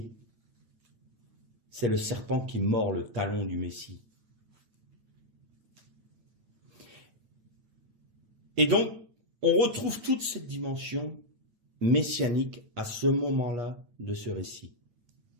c'est le serpent qui mord le talon du Messie. Et donc, on retrouve toute cette dimension messianique à ce moment-là de ce récit.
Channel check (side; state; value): left; late; 8.8 ms